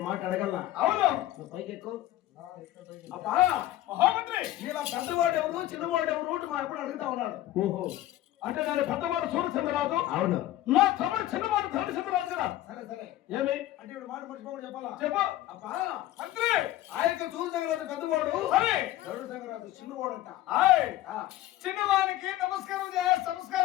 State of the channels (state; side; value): quieter; right; 14.6 dB